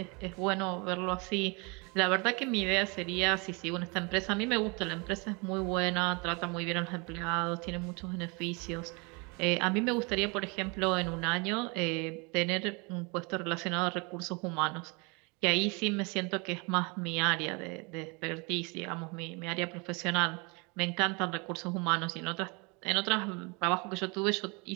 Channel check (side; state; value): left; quieter; 30.0 dB